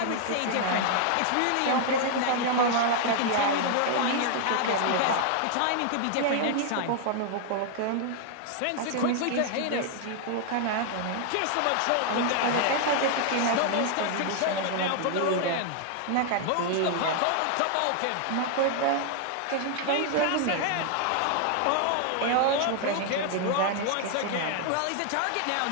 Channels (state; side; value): different; both; correlation 0.00